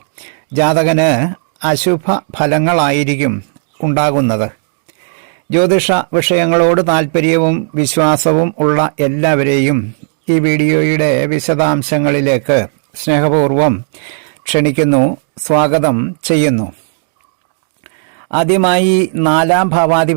ജാതകന് അശുഭ ഫലങ്ങളായിരിക്കും ഉണ്ടാകുന്നത്. ജ്യോതിഷ വിഷയങ്ങളോട് താൽപ്പര്യവും വിശ്വാസവും ഉള്ള എല്ലാവരെയും ഈ വീഡിയോയുടെ വിശദാംശങ്ങളിലേക്ക് സ്നേഹപൂർവം ക്ഷണിക്കുന്നു, സ്വാഗതം ചെയ്യുന്നു. ആദ്യമായി 4-ാം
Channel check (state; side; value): silent; left; digital silence